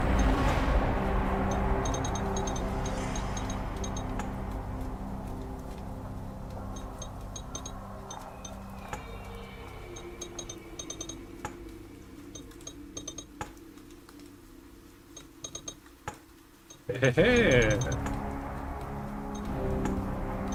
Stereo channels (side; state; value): both; identical; correlation 1.00